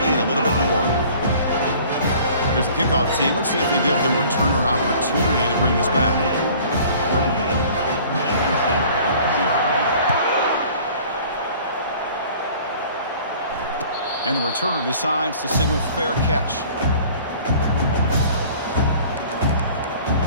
a little bit more. Here's the kickoff team. Let's see if they give the returner an opportunity to bring this back. And the returner decides to signal fair catch.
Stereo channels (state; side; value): inverted; both; correlation -0.49